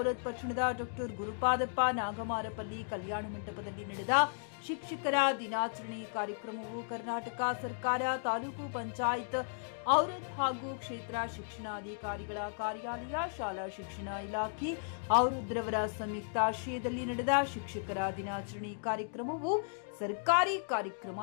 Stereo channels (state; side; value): silent; right; digital silence